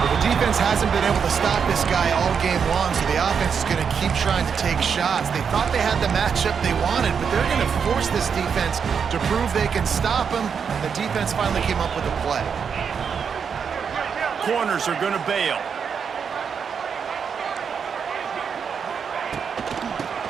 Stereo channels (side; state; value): left; quieter; 6.6 dB